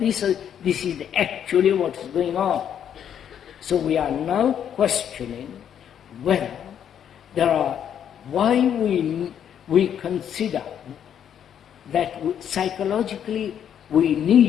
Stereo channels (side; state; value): right; quieter; 9.1 dB